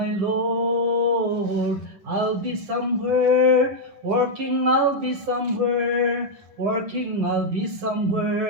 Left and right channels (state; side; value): late; left; 10 ms